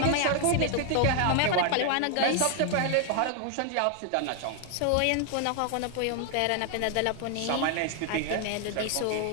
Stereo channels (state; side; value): different; both; correlation 0.00